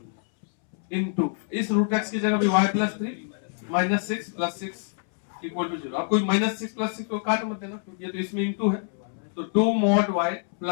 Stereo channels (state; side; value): silent; right; 61 dB below the other